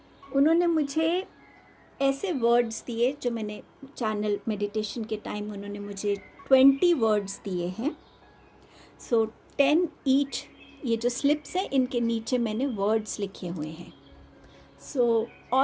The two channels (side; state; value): both; identical; correlation 1.00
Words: उन्होंने मुझे ऐसे वर्ड्स दिए जो मैंने चैनल मेडिटेशन के टाइम उन्होंने मुझे 20 वर्ड्स दिए हैं। सो 10 ईच। ये जो स्लिप्स हैं इनके नीचे मैंने वर्ड्स लिखे हुए हैं।